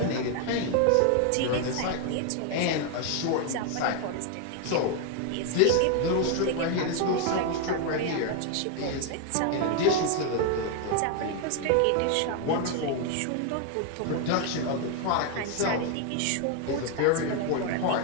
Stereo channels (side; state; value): both; different; correlation 0.01